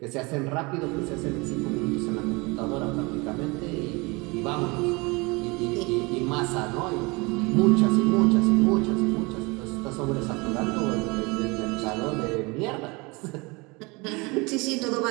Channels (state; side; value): quieter; left; 26.5 dB